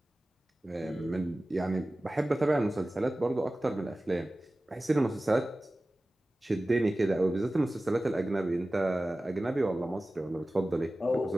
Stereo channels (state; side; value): normal; both; correlation 0.96